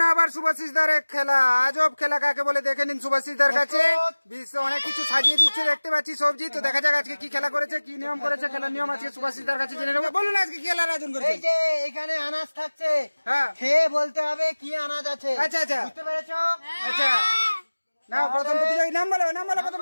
আবার শুভাশিসদার এক খেলা, আজব খেলা কাকে বলে দেখে নিন শুভাশিসদার কাছে। বিশ্ব অনেক কিছু সাজিয়ে দিচ্ছে দেখতে পাচ্ছি সবজি। তো দেখা যাক আজকে কি খেলা করেছে, কি নিয়ম করেছে, খেলার নিয়ম আজকে শুভাশিসদার কাছে জেনে নেবো। বলুন আজকে কি খেলার আয়োজন করেছে? এই যে এখানে আনাজ থাকছে, হ্যাঁ খেয়ে বলতে হবে কি আনাজ আছে। আচ্ছা আচ্ছা বুঝতে পেরেছো? আচ্ছা না, প্রথম প্রতিযোগী নাম বলো, নাম বলো। প্রথম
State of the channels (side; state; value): both; inverted; correlation -1.00